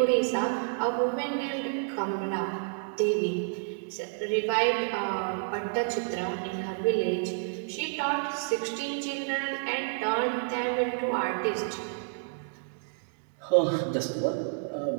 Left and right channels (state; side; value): silent; left; digital silence